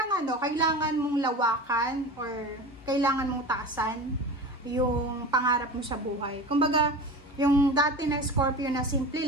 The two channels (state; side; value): normal; both; correlation 0.32